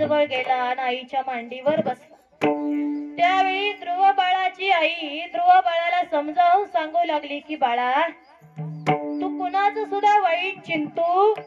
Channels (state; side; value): identical; both; correlation 1.00